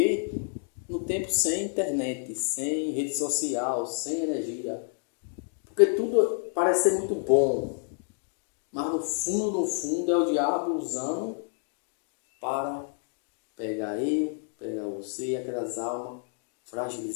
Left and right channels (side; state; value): right; silent; 59 dB below the other